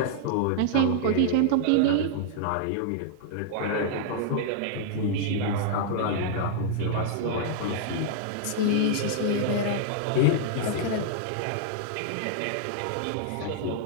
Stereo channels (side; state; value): both; different; correlation -0.01